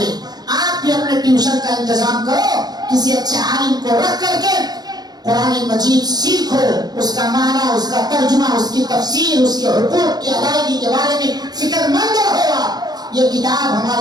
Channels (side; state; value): left; late; 0.19 ms